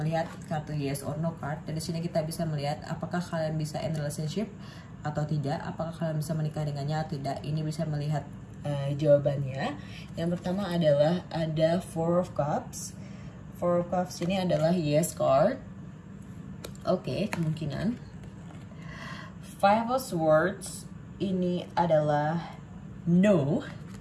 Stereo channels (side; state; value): both; identical; correlation 1.00